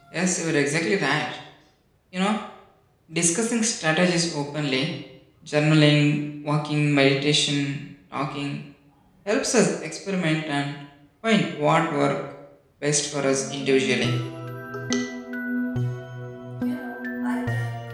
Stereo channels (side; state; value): both; identical; correlation 1.00